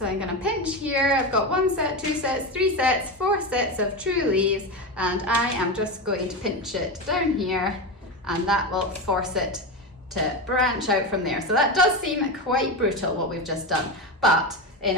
I'm going to pinch here. I've got 1 set, 2 sets, 3 sets, 4 sets of true leaves, and I am just going to pinch it down here, and that will force it to branch out from there. So that does seem quite brutal what we've just done, but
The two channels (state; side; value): normal; both; correlation 0.18